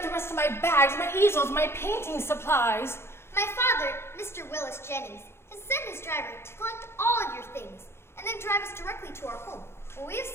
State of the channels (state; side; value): late; right; 0.12 ms